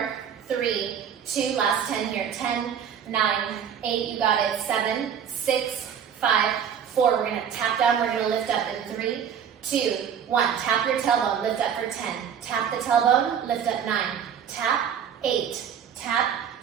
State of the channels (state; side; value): quieter; left; 8.2 dB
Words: 3, 2, last 10 here. 10, 9, 8, you got it. 7, 6, 5, 4, we're gonna tap down, we're gonna lift up in 3, 2, 1. Tap your tailbone, lift up for 10. Tap the tailbone, lift up 9. Tap, 8. Tap,